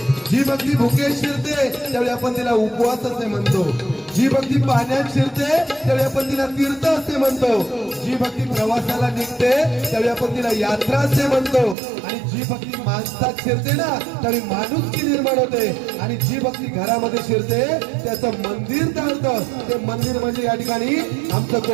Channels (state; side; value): drops out; left; at 11.8 s